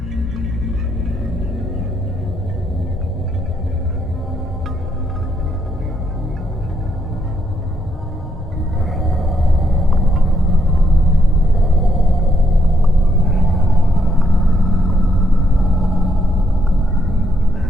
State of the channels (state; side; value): normal; both; correlation 0.75